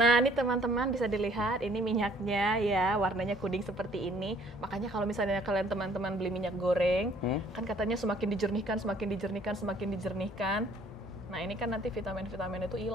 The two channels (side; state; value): both; normal; correlation 0.59